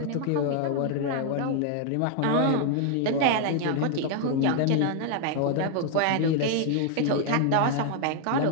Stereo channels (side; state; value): both; different; correlation 0.00